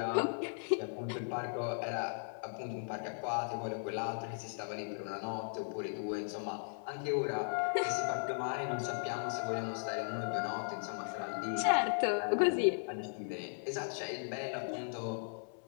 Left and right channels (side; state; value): right; silent; 53 dB below the other